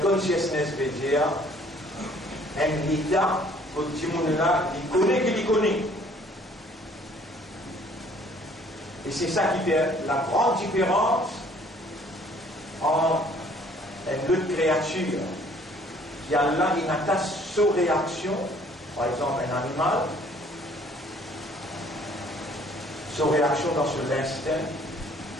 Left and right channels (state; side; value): normal; both; correlation 0.58